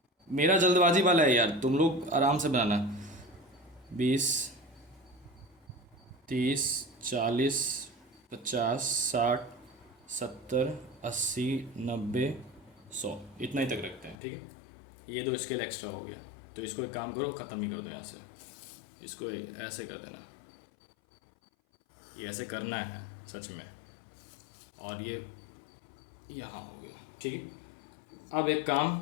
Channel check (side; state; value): right; drops out; at 14.2 s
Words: मेरा जल्दबाजी वाला है यार, तुम लोग आराम से बनाना। 20, 30, 40, 50, 60, 70, 80, 90, 100, इतना ही तक रखते हैं, ठीक है। ये दो स्केल एक्स्ट्रा हो गया, तो इसको एक काम करो, ख़त्म ही कर दो यहाँ से। इसको ऐसे कर देना, ये ऐसे करना है सच में। और ये यहाँ हो गया, ठीक है। अब एक काम,